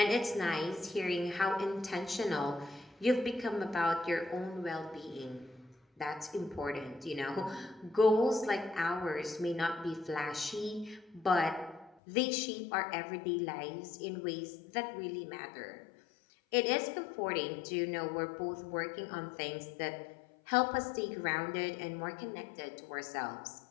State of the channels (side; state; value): right; drops out; at 12.0 s